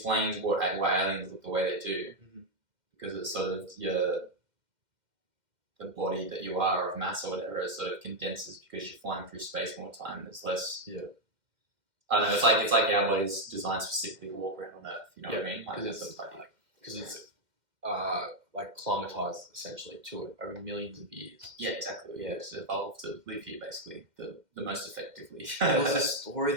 why aliens look the way they do. Because it's sort of the body that you are of mass or whatever, it sort of condenses because you're flying through space more time. There's less. Yeah. I don't know. It's like our body's designed specifically to walk around on Earth. You know what I mean? Because it's like climatized essentially to it over millions of years. Yeah, exactly. Yeah, it's evolved to live here basically the most effectively. There was a story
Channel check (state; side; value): late; left; 2.1 ms